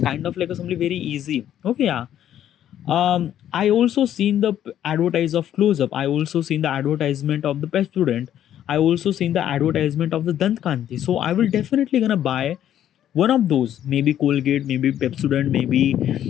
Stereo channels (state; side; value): quieter; right; 11.0 dB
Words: of like a something very easy. Okay, yeah. I also seen the advertise of Close Up. I also seen the advertisement of the Pet Student. I also seen the advertisement of the Dant Kanti. So I will definitely gonna buy one of those. Maybe Colgate, maybe Pepsodent, maybe